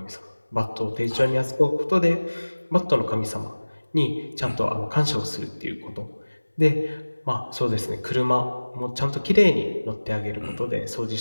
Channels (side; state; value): both; inverted; correlation -1.00